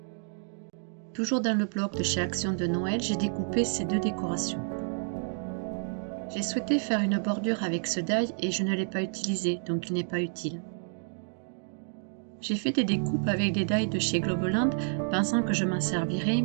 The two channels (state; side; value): silent; left; 58 dB below the other